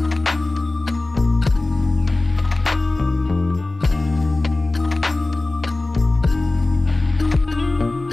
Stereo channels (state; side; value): quieter; right; 3.0 dB